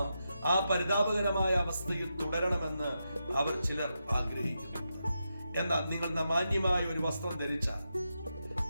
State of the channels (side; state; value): both; inverted; correlation -0.87